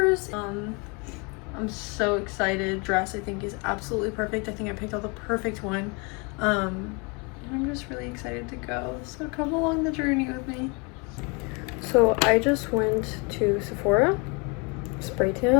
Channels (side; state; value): right; quieter; 31.3 dB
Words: I'm so excited. Dress I think is absolutely perfect. I think I picked out the perfect one. I'm just really excited to go. So come along the journey with me. So I just went to Sephora. Spray